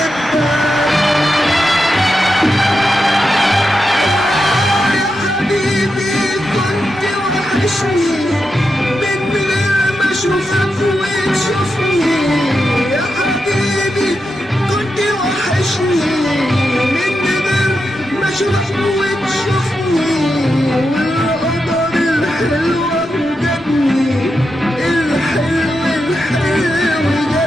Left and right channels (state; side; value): normal; both; correlation 0.87